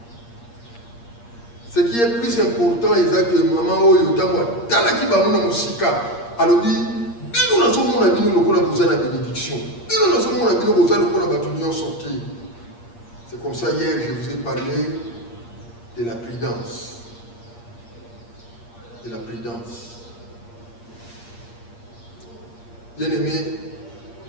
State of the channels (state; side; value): late; right; 8.6 ms